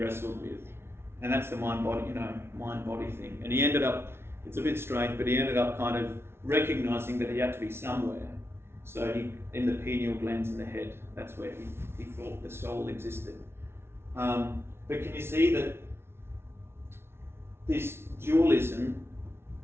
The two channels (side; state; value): left; late; 0.12 ms